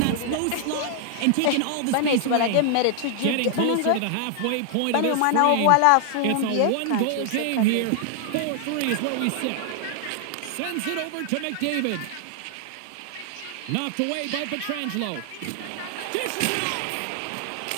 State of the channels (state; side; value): different; both; correlation 0.00